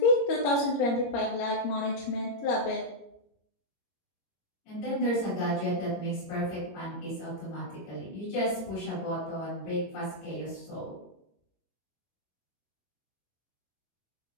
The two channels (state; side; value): late; right; 22 ms